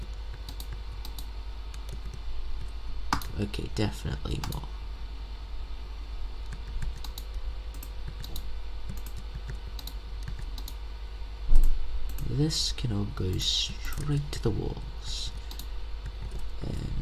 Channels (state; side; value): identical; both; correlation 1.00